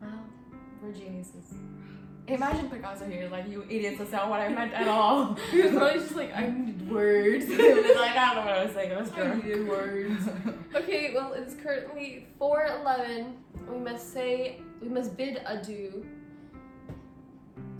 Wow, we're geniuses. Imagine Picasso here, like, you idiots, that's not what I meant at all. He was probably just like, I need words. He was like, I don't know what I was saying, it was I drunk. needed words. Okay, well, it's currently 4:11. We must bid adieu.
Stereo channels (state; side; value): identical; both; correlation 1.00